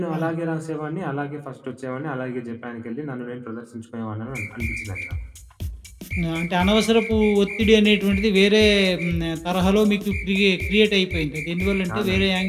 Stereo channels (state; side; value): identical; both; correlation 1.00